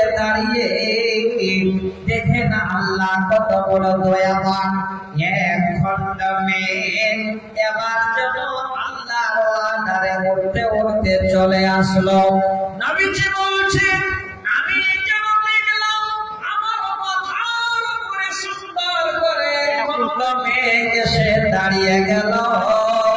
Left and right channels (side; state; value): both; identical; correlation 1.00